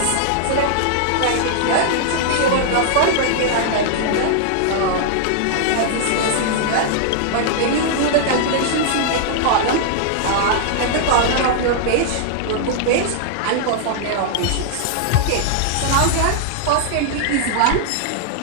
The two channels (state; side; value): different; both; correlation -0.01